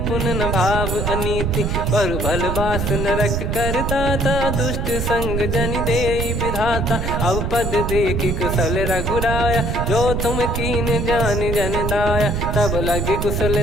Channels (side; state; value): right; noise; rumble, 1 dB below the sound